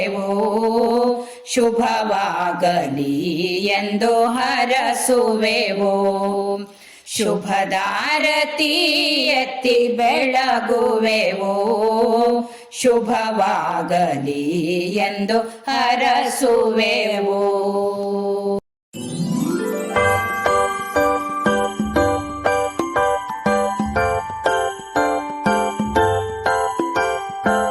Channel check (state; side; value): identical; both; correlation 1.00